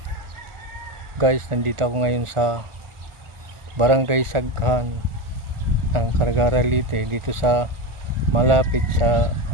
Guys, nandito ako ngayon sa Barangay Saghan ng Cargara Leyte, dito sa malapit sa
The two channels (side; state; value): left; late; 1.4 ms